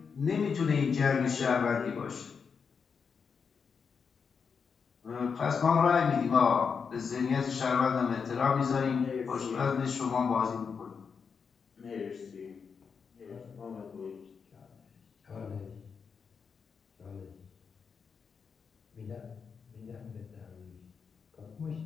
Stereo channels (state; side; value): quieter; right; 6.0 dB